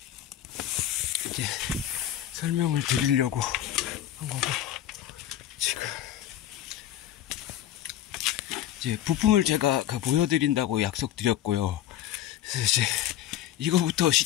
설명을 드리려고 한 거고, 지금 이제 부품을 제가 보여드린다고 약속드렸고요. 그래서 이제 이거부터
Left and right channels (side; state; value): right; quieter; 11.7 dB